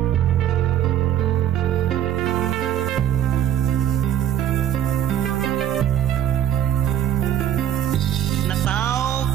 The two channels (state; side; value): quieter; left; 10.6 dB